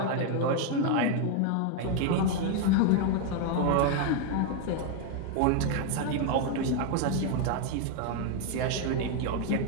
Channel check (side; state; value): both; different; correlation 0.01